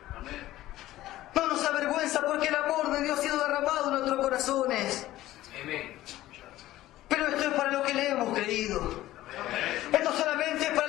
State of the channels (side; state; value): right; quieter; 15.4 dB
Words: No nos vergüenza porque el amor de Dios ha sido derramado en nuestros corazones. Amén. Pero esto es para lo que le hemos creído. Esto solamente es para